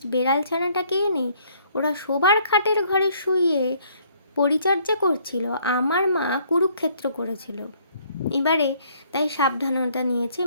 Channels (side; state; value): both; inverted; correlation -0.63